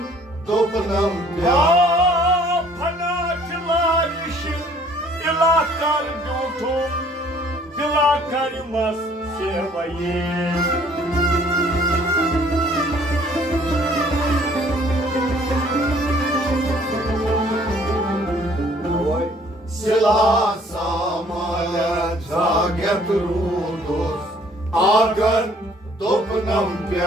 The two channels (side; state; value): both; normal; correlation 0.58